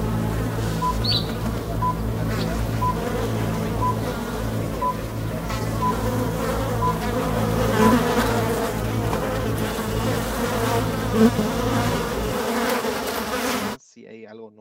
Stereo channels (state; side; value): identical; both; correlation 1.00